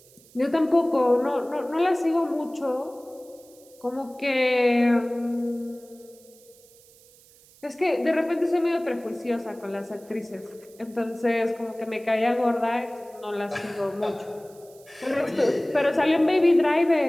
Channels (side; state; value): right; noise; hiss, 26 dB below the sound